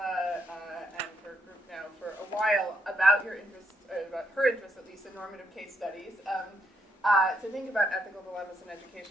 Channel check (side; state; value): both; normal; correlation 0.76